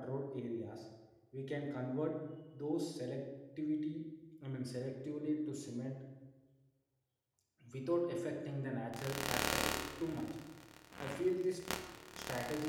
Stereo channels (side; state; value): both; identical; correlation 1.00